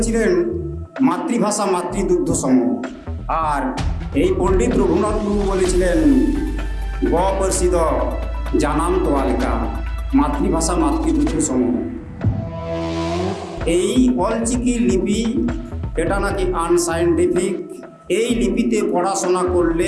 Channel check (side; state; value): both; identical; correlation 1.00